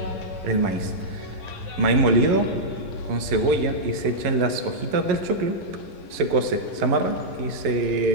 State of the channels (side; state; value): left; late; 11 ms